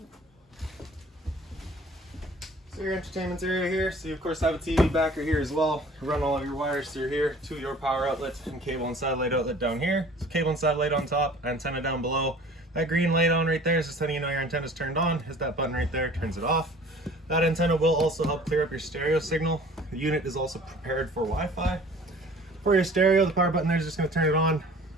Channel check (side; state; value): both; normal; correlation 0.48